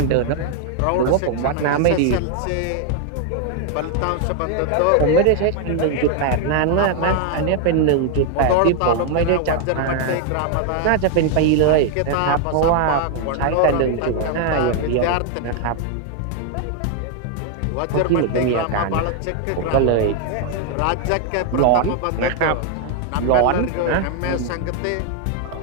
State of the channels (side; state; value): both; different; correlation 0.00